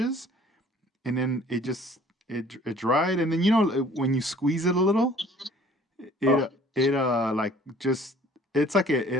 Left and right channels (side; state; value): both; normal; correlation 0.54